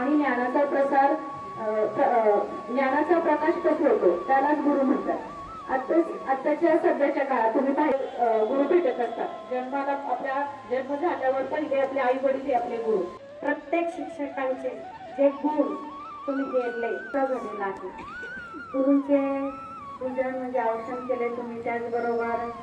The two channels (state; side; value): identical; both; correlation 1.00